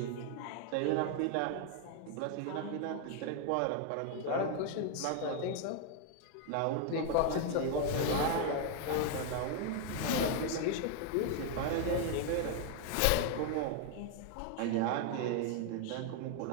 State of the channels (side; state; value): both; different; correlation 0.00